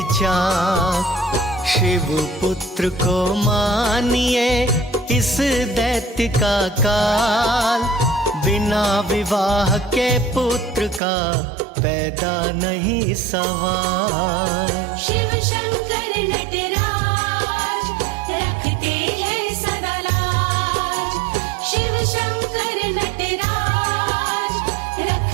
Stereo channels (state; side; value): drops out; left; at 11.0 s